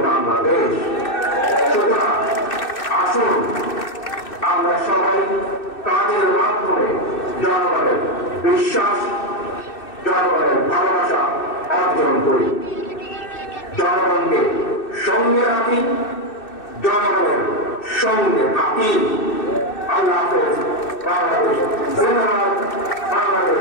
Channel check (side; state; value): right; late; 2.6 ms